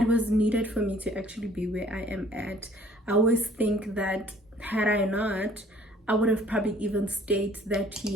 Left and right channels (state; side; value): normal; both; correlation 0.56